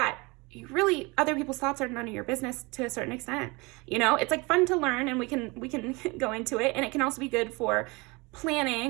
you really, other people's thoughts are none of your business to a certain extent. You know, it's like fun to learn and we can go into it, and it can also be good for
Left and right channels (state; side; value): quieter; left; 25.9 dB